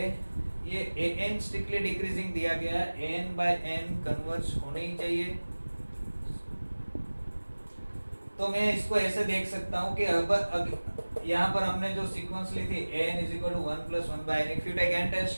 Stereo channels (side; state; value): both; inverted; correlation -1.00